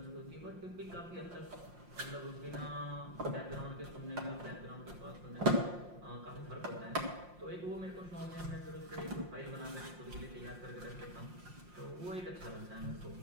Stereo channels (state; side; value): late; left; 5.6 ms